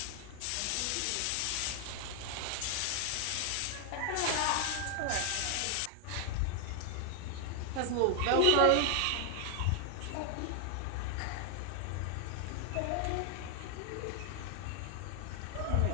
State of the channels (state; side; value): different; both; correlation 0.00